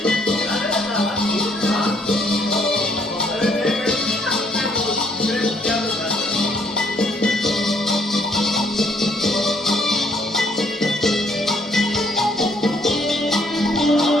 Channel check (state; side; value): normal; both; correlation 0.67